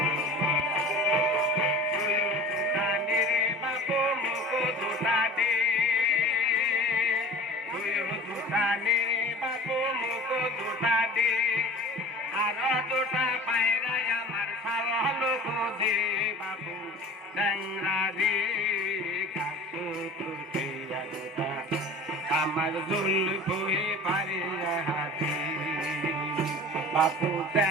বাপু মুখ দুটা দে বাপু মুখ দুটা দে আর দুটা পায়রাই আমার সাল দে বাপু ট্যাংরা দে কাকু আমার জুলফুহি পারি হাজি বাপু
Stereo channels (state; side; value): normal; both; correlation 0.40